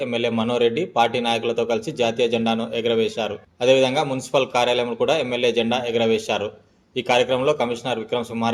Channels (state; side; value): identical; both; correlation 1.00